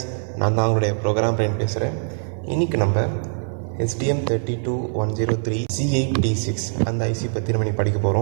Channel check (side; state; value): left; silent; 64 dB below the other